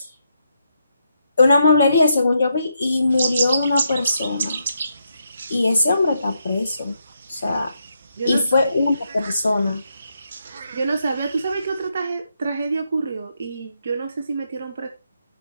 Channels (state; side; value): inverted; both; correlation -0.80